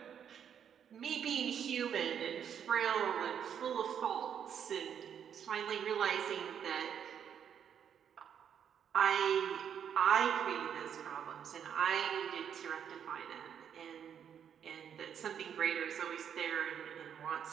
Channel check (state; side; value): quieter; left; 8.4 dB